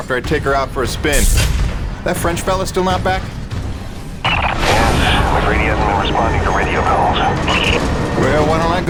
I take her out for a spin. That French fella still not back? Yes, I'm afraid he hasn't been responding to radio calls. Well, why don't I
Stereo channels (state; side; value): identical; both; correlation 1.00